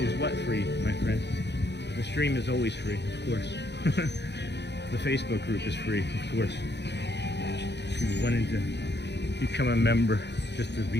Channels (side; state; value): right; late; 0.50 ms